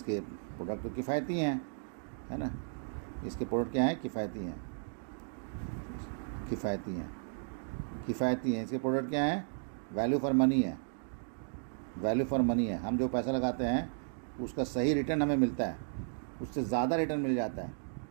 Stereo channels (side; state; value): left; silent; digital silence